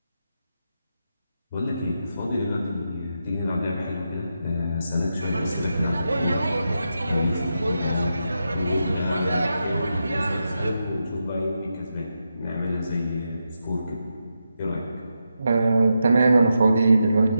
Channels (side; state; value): both; inverted; correlation -0.87